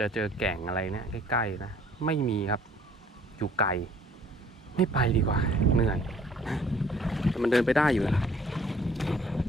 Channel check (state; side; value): normal; both; correlation 0.57